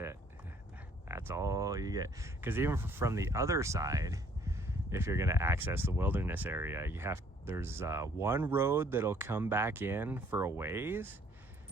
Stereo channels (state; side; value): normal; both; correlation 0.61